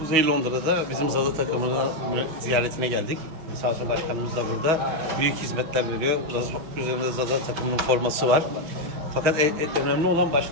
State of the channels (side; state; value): left; late; 5.9 ms